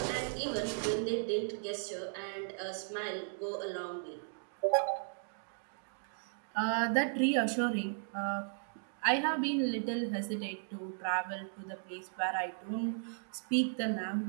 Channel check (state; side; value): silent; left; digital silence